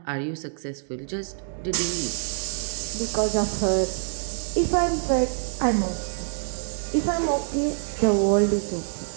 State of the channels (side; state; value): left; silent; digital silence